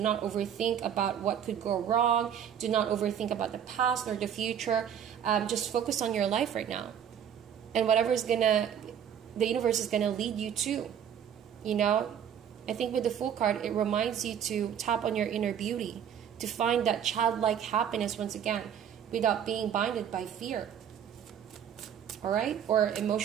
overthink about what could go wrong. Do not overthink about the past or the future. Just focus on your life right now, and whatever is the universe is gonna lead you to. You know, I think with the Fool card, it reminds you to tap on your inner beauty, to find that childlike happiness once again, without being binded by fear. All right, or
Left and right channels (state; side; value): quieter; left; 8.9 dB